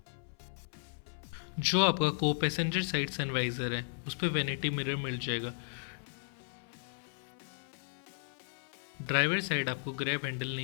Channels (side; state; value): right; silent; 54 dB below the other